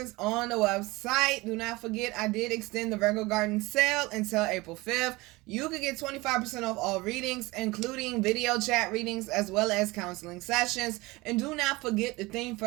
on the website. Do not forget, I did extend the Virgo Garden sale until April 5th. You can get 25% off all readings, including video chat readings as well as counseling sessions. And do not forget, the theme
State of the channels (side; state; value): left; quieter; 22.0 dB